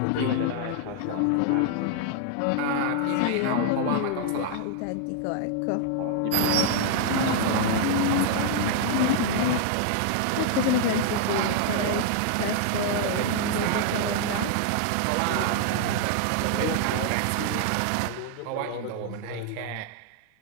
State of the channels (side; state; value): both; different; correlation 0.00